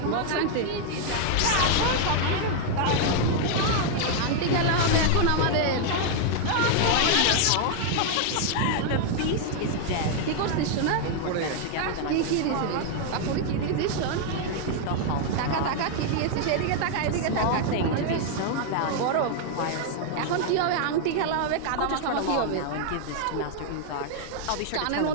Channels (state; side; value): different; both; correlation 0.00